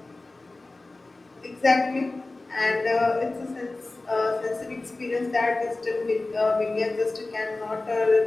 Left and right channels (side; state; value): right; quieter; 3.1 dB